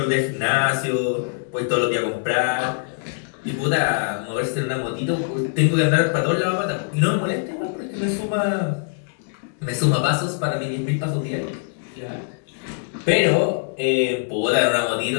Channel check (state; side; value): silent; right; digital silence